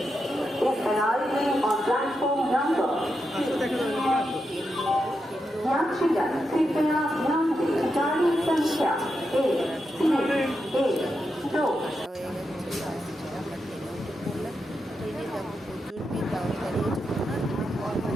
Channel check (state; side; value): normal; both; correlation 0.86